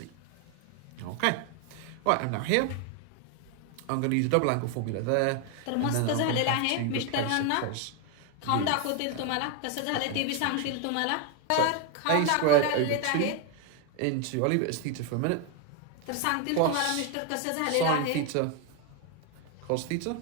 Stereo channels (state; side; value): different; both; correlation 0.01